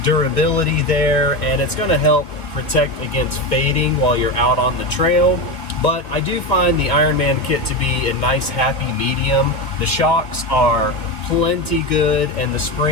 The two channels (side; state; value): right; late; 1.9 ms